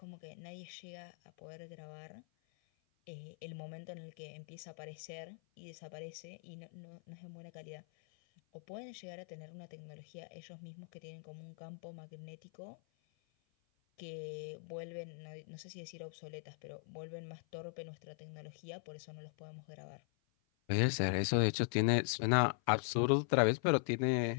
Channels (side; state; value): right; silent; 50 dB below the other